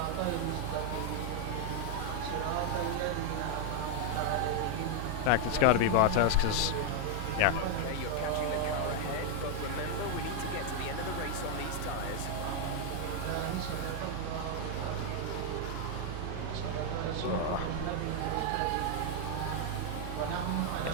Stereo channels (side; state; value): both; different; correlation 0.00